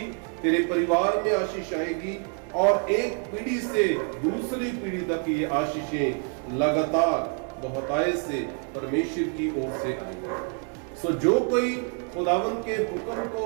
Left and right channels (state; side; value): quieter; left; 38.7 dB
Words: तेरे परिवार में आशीष आएगी और एक पीढ़ी से दूसरी पीढ़ी तक ये आशीषें लगातार बहुतायत से परमेश्वर की ओर से आएंगी। सो जो कोई खुदावन के हुक्म को